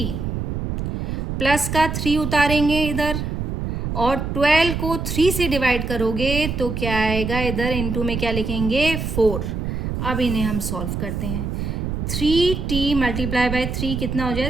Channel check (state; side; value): noise; right; rumble, 3 dB below the sound